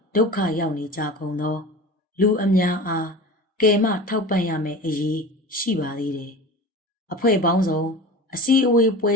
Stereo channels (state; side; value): normal; both; correlation 0.34